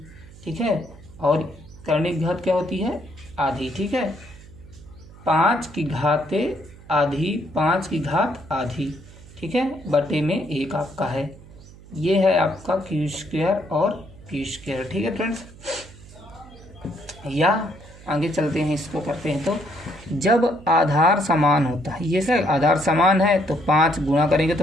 ठीक है, और करणी की घात क्या होती है? आधी। ठीक है, 5 की घात आधी, 5 की घात आधी। ठीक है, बटे में 1 आपका है। ये है आपका Q² और P²। ठीक है फ्रेंड्स, या आगे चलते हैं, इसको करते हैं। तो जब आधार समान होता है, ये सर आधार समान है तो 5 गुणा करेंगे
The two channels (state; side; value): noise; right; hum, 20 dB below the sound